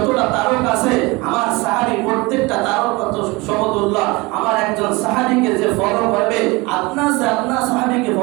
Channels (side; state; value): left; quieter; 24.3 dB